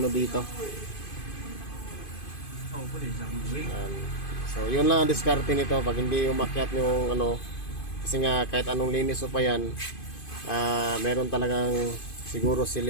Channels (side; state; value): right; late; 2.5 ms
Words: ano dito. Ayan. So yun lang ang diskarte nito pag hindi umakyat yung ano. Kasi nga kahit anong linis o pa yan, meron talagang siguro